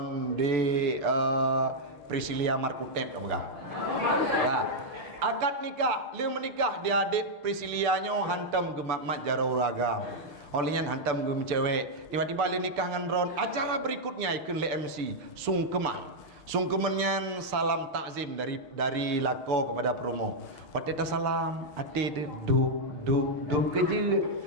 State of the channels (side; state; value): left; late; 6.8 ms